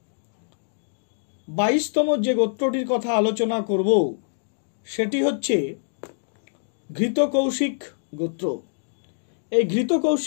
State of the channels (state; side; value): silent; right; digital silence